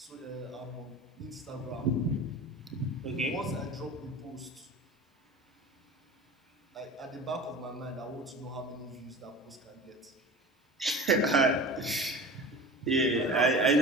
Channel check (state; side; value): normal; both; correlation 0.35